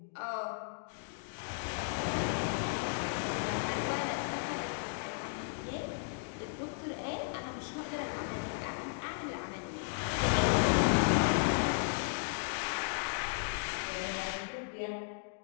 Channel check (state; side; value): silent; right; digital silence